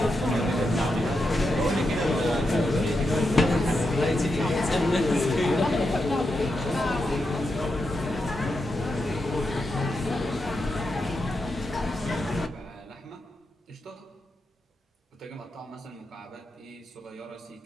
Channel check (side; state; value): both; normal; correlation 0.86